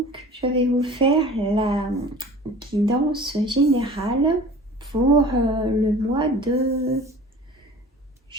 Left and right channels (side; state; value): both; normal; correlation 0.42